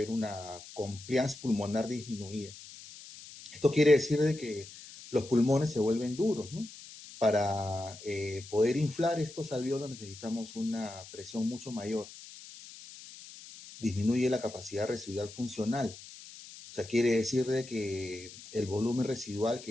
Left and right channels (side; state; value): left; noise; hiss, 16 dB below the sound